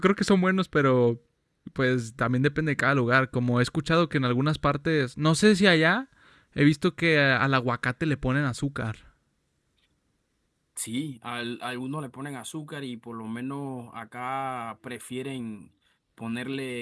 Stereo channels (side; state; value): both; identical; correlation 1.00